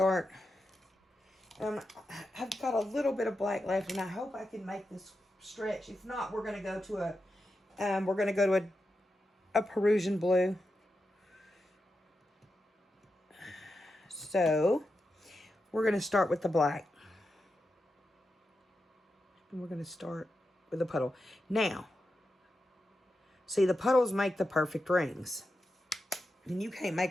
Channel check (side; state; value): both; normal; correlation 0.89